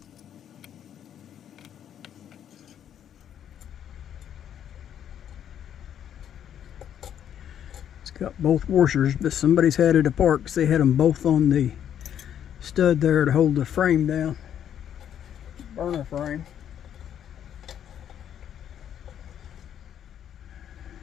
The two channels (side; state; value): right; quieter; 9.6 dB